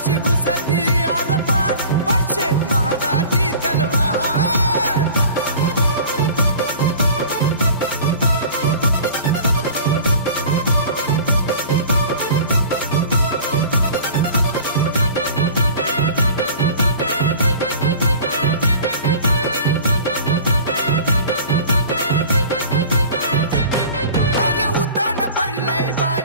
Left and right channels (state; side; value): inverted; both; correlation -0.42